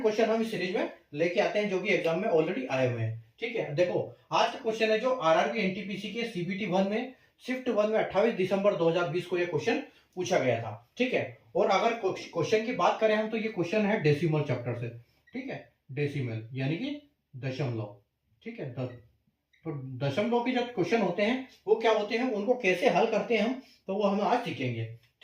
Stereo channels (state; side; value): identical; both; correlation 1.00